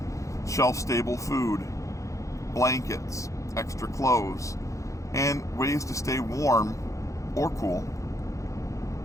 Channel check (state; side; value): late; right; 0.15 ms